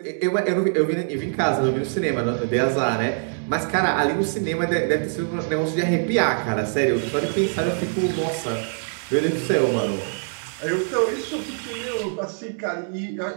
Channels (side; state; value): left; silent; digital silence